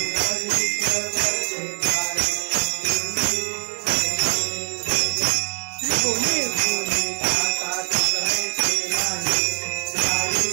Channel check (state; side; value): silent; left; digital silence